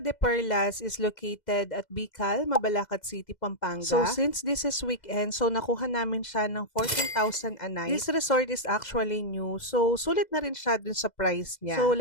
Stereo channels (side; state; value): right; late; 2.0 ms